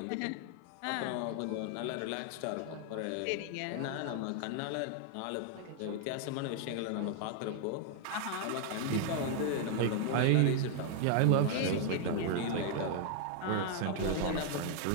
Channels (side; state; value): both; different; correlation 0.00